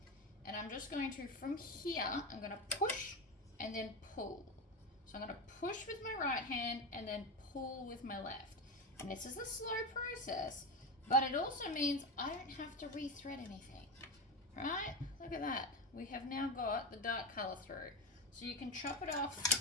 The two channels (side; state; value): both; normal; correlation 0.17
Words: and I'm just going to, from here, I'm going to push and then pull. So I'm going to push with my right hand and then pull with my left. And this is a slow process, but it also means I don't have to rethread anything, right? Look at that. We have now got the dark color through. So you can chop it